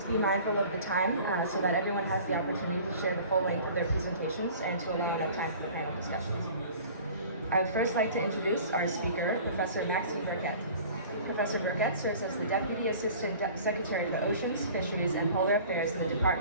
be mindful of the time so that everyone has the opportunity to share the full length of their presentations and to allow enough time for the panel discussions. I would first like to introduce our speaker, Professor Maxime Burkett. Professor Burkett serves as the Deputy Assistant Secretary for Oceans, Fisheries, and Polar Affairs in the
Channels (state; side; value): inverted; both; correlation -0.45